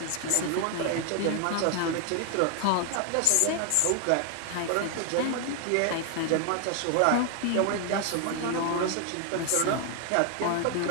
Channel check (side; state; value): both; different; correlation 0.00